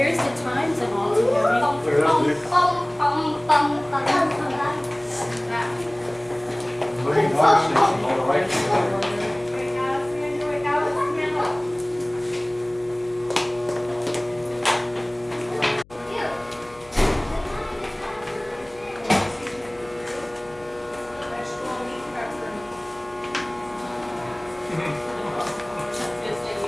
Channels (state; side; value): noise; left; hum, 26 dB below the sound